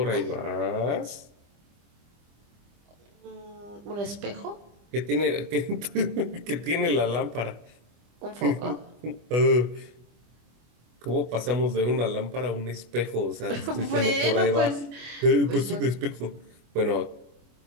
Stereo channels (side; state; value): left; late; 25 ms